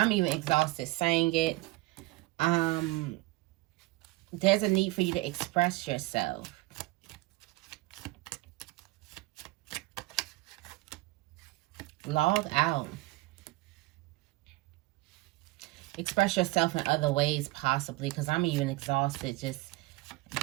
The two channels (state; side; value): quieter; left; 20.7 dB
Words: even exhausted saying it. There's a need for you to express yourself. Log out. Express yourself in other ways, possibly, because I'm even exhausted just